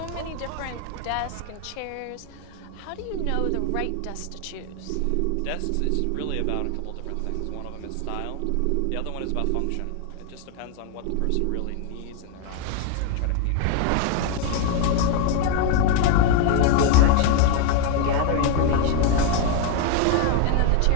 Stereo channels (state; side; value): different; both; correlation 0.01